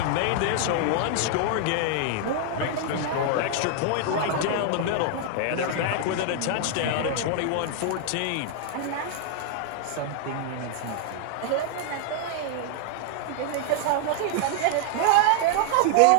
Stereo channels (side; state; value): both; different; correlation 0.00